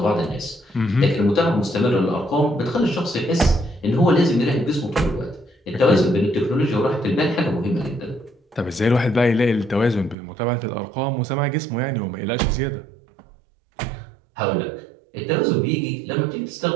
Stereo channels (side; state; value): left; drops out; at 10.2 s